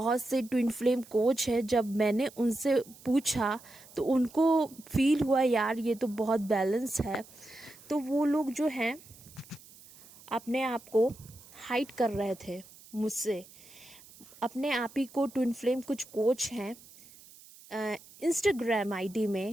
से ट्विन फ्लेम कोच है, जब मैंने उनसे पूछा तो उनको फील हुआ यार ये तो बहुत बैलेंस है, तो वो लोग जो हैं अपने आप को हाइड कर रहे थे मुझसे। अपने आप ही को ट्विन फ्लेम कुछ कोच हैं इंस्टाग्राम आईडी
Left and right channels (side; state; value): right; noise; hiss, 22 dB below the sound